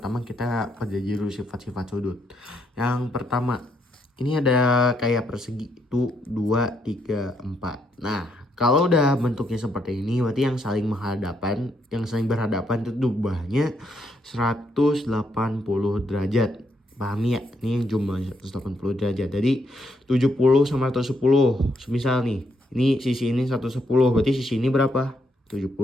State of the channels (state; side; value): normal; both; correlation 0.76